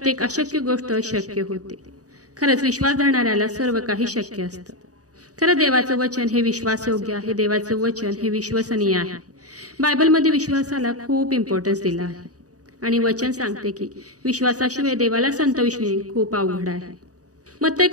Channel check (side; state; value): left; late; 0.67 ms